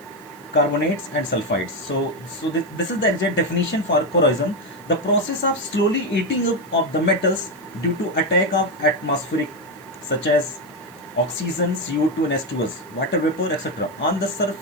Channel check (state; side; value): noise; right; hiss, 26 dB below the sound